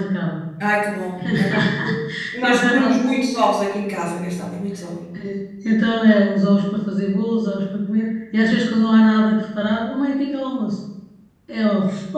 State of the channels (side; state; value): both; identical; correlation 1.00